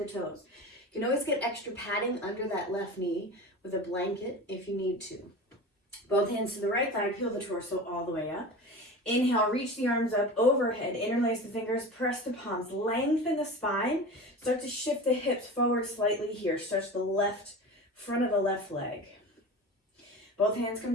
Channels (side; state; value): both; normal; correlation 0.32